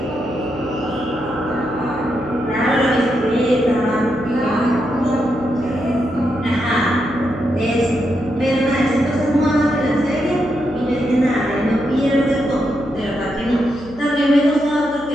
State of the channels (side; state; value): right; noise; hum, 20 dB below the sound